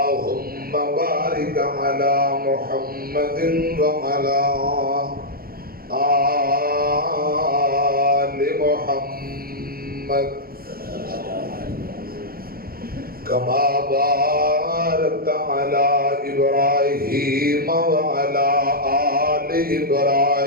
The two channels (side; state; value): left; late; 0.43 ms